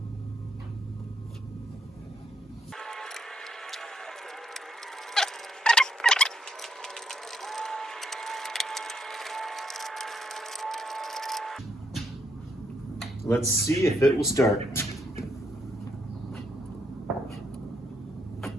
Let's see if it will start.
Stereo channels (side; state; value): both; normal; correlation 0.75